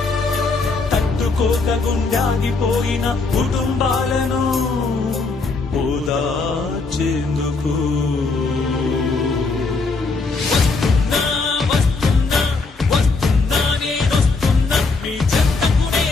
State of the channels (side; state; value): right; quieter; 3.9 dB